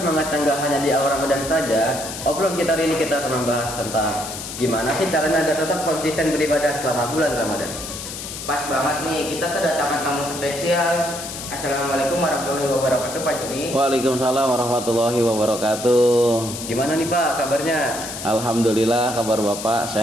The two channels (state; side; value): noise; left; hiss, 9 dB below the sound